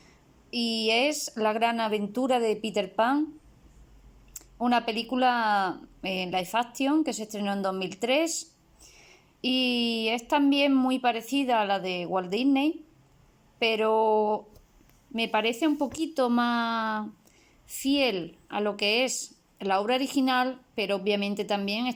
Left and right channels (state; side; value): identical; both; correlation 1.00